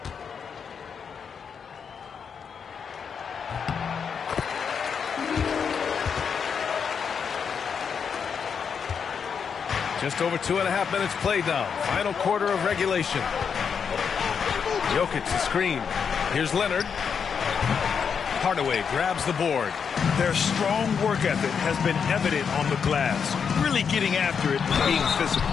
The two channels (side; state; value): right; quieter; 6.6 dB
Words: Just over 2.5 minutes played now. Final quarter of regulation. Jokic the screen. Here's Leonard. Hardaway grabs the board. Their strong work ethic has been evident on the glass. Really getting after it and being physical.